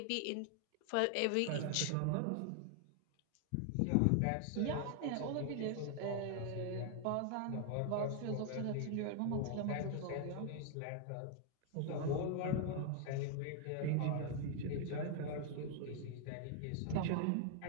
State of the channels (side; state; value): both; different; correlation 0.00